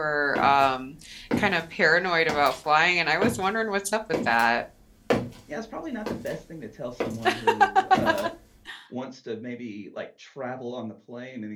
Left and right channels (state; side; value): identical; both; correlation 1.00